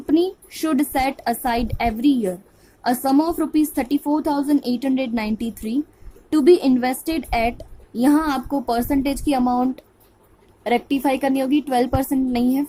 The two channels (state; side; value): identical; both; correlation 1.00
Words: should set aside every year a sum of rupees 34,893 to be invested at, यहाँ आपको परसेंटेज की अमाउंट रेक्टिफाई करनी होगी, 12% नहीं है